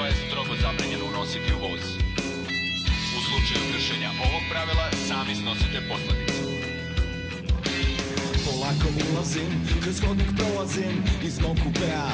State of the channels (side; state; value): both; identical; correlation 1.00